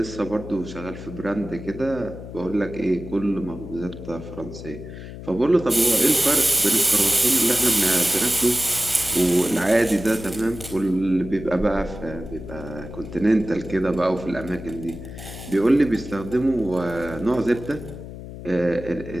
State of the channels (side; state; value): left; noise; hum, 12 dB below the sound